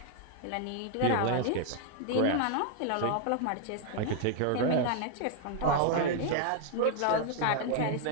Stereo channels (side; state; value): both; different; correlation 0.00